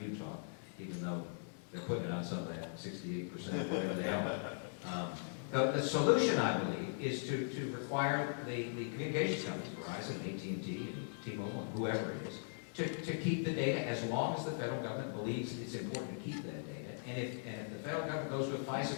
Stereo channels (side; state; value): right; silent; digital silence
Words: Utah, even though they're putting it on some of that 68%, whatever they are. The solution, I believe, is to require the communications companies, Verizon, AT&T, and T-Mobile, and whoever it is, to keep the data as long as the federal government believes it's important to keep that data. And if the federal government goes to a